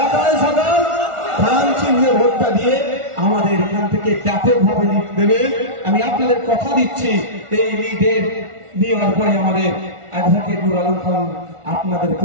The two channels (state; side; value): late; left; 1.4 ms